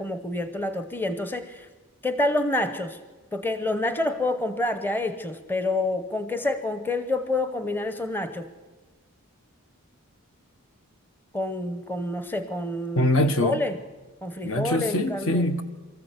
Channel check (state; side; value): normal; both; correlation 0.59